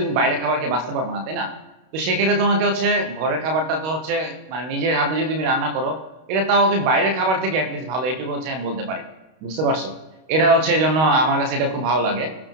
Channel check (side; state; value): left; late; 32 ms